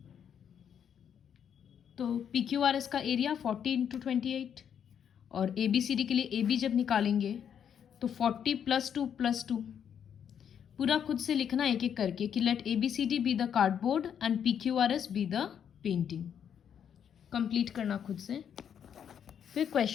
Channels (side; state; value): right; quieter; 8.4 dB